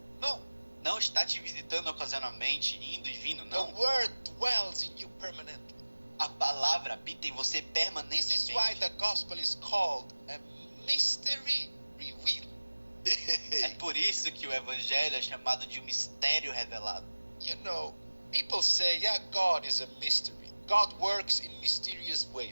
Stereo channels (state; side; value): inverted; both; correlation -1.00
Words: No, Não está te visitando ocasionalmente, indo e vindo, the não. word dwells in you permanently. A palavra habita em você This is permanentemente. why the gospel is called a mystery revealed. É por isso que o evangelho é chamado de um mistério revelado. You know, people say, yeah, God is a mystery. God works in mysterious